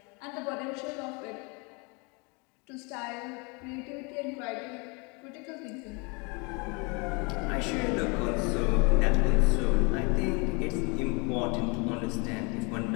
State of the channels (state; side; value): quieter; right; 30.7 dB